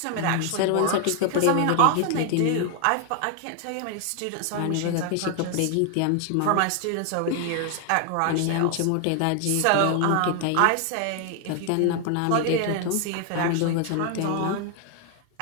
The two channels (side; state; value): both; different; correlation 0.00